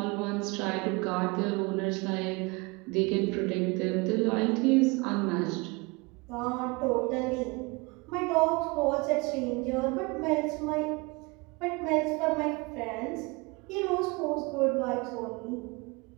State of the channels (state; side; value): quieter; left; 26.9 dB